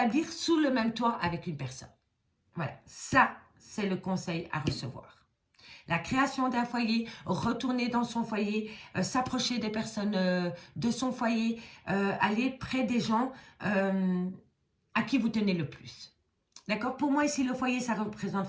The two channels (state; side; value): identical; both; correlation 1.00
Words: sous le même toit avec une personne. Voilà, ça, c'est le conseil à recevoir. La création d'un foyer, retourner dans son foyer, s'approcher des personnes de son foyer, aller près des gens à qui vous tenez le plus. D'accord? Pour moi, ici, le foyer, ça représente